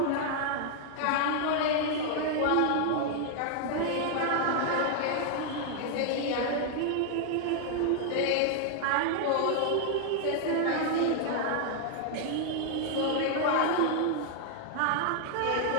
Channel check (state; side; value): different; both; correlation 0.00